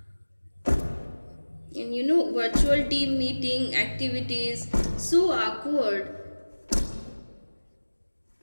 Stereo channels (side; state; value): both; inverted; correlation -1.00